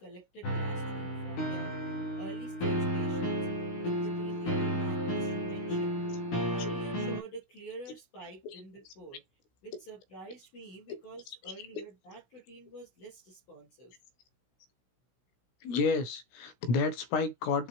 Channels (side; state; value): right; late; 16 ms